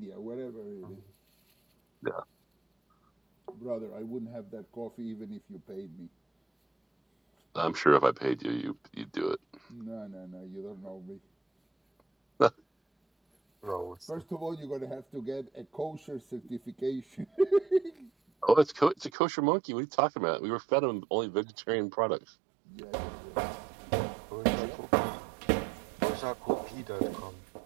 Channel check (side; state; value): left; drops out; at 19.1 s